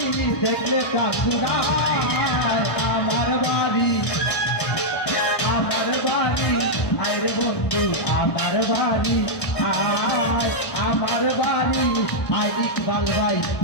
দেখলে কাকুরায় আমার বাড়ি, আমার বাড়ি আয় রে বন্ধু আমার বাড়ি আয়, আমার বাড়ি আয় ইকবাল ভাই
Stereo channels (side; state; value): right; late; 1.1 ms